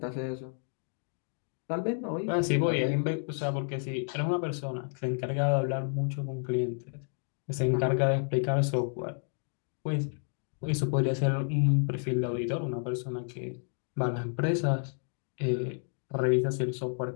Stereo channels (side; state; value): right; silent; 57 dB below the other